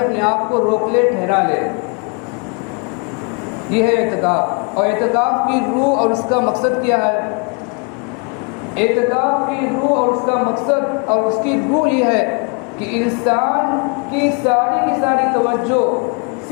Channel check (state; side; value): quieter; right; 34.4 dB